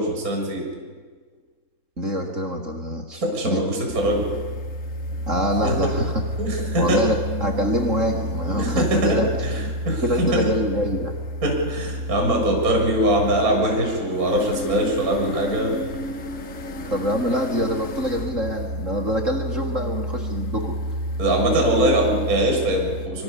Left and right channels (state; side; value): late; left; 3.7 ms